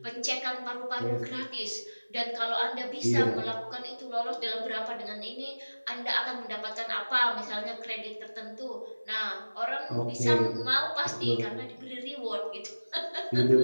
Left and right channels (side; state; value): both; inverted; correlation -1.00